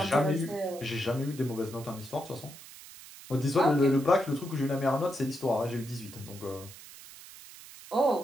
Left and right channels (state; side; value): noise; right; hiss, 17 dB below the sound